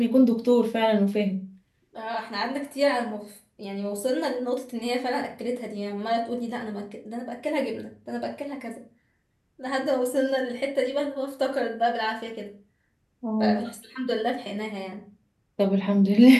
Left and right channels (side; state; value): both; identical; correlation 1.00